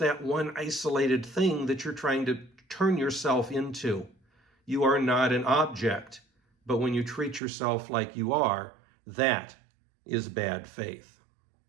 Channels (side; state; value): left; drops out; at 7.4 s